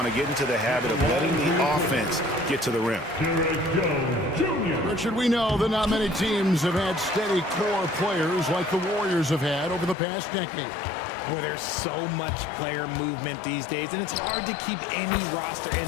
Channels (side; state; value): right; drops out; at 10.0 s